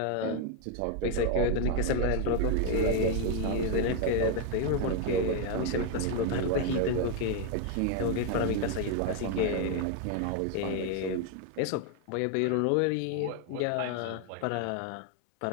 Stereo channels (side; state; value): both; different; correlation 0.01